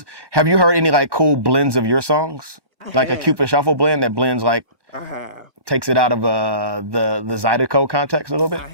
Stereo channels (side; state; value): left; late; 1.1 ms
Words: have you heard any like cool blends of your songs? Like a Cupid Shuffle blend that blends like, takes it out of the Zydeco context a little bit?